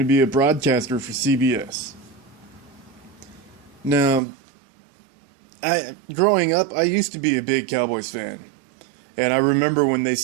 to be a broadcaster for CBS. Now, growing up, I used to be a big Cowboys fan, and I remember when they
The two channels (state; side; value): drops out; left; at 4.2 s